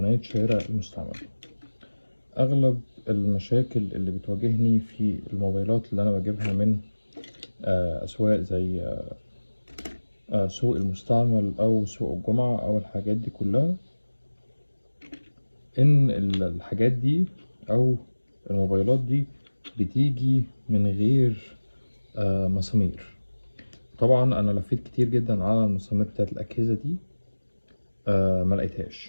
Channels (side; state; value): both; inverted; correlation -1.00